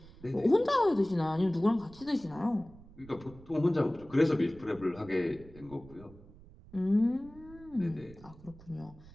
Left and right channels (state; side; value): noise; right; rumble, 21 dB below the sound